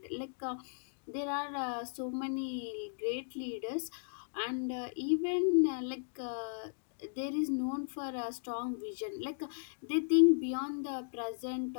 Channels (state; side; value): silent; right; digital silence